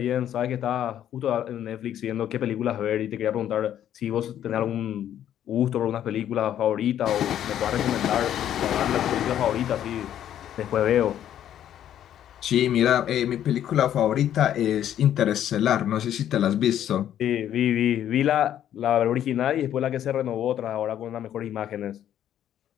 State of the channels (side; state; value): right; quieter; 10.8 dB